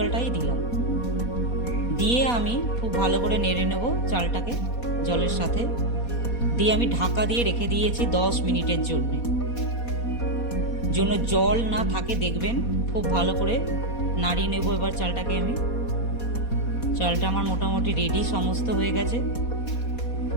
দিলাম। দিয়ে আমি খুব ভালো করে নেড়ে নেব চালটাকে জলের সাথে। দিয়ে আমি ঢাকা দিয়ে রেখে দিয়েছি 10 মিনিটের জন্য জল না থাকে দেখবেন। খুব ভালো করে নাড়িয়ে নেব এবার চালটাকে আমি। চালটা আমার মোটামুটি রেডি, সমস্ত হয়ে গেছে,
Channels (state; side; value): late; right; 4.2 ms